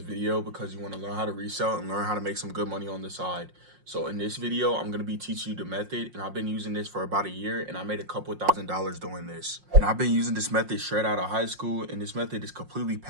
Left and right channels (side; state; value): left; late; 5.6 ms